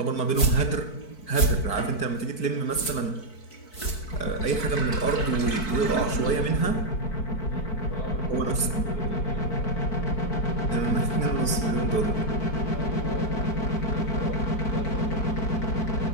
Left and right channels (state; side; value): late; right; 4.5 ms